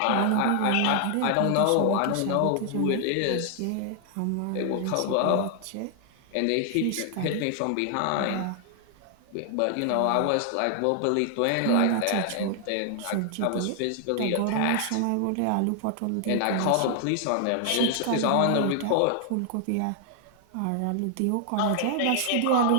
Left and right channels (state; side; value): different; both; correlation 0.00